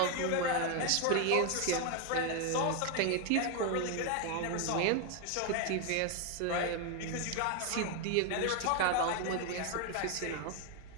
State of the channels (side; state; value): both; different; correlation 0.01